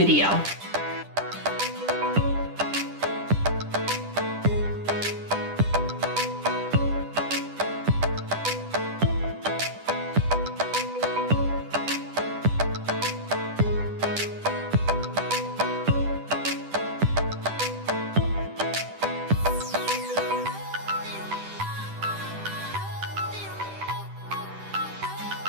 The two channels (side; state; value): left; late; 10 ms